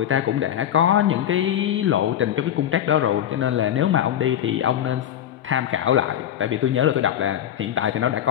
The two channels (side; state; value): right; quieter; 10.6 dB